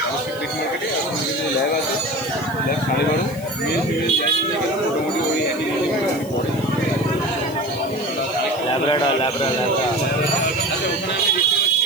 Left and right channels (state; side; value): noise; left; hiss, 19 dB below the sound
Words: ফিশ মার্কেটে। এখন যে ল্যাব আছে, ল্যাব 12:30, মেল ফিমেল যাই নিয়ে গেলাম মোটামুটি ওই একই পড়ে ল্যাব্রাডর। আচ্ছা, ওখানে আমি দেখতে